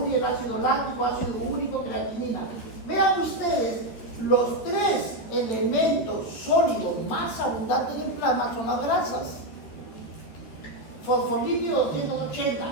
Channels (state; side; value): late; right; 13 ms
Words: el ácido láctico, ácido úrico, creatinina. Vean ustedes, los tres elementos sólidos más abundantes en el plasma son las grasas. Fosfolípido